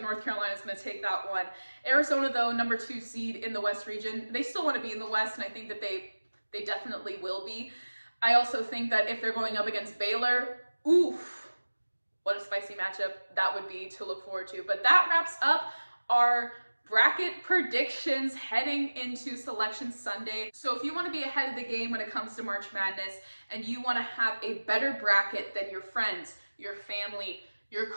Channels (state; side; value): inverted; both; correlation -1.00